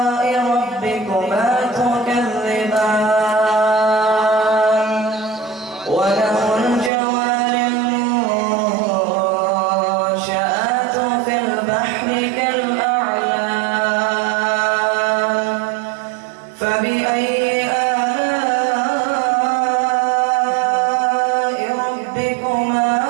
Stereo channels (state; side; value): drops out; left; at 6.9 s